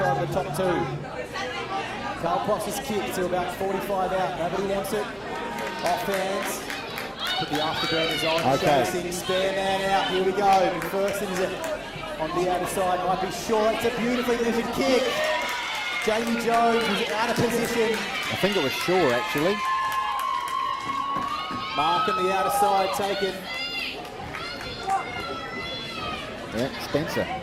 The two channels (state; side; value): identical; both; correlation 1.00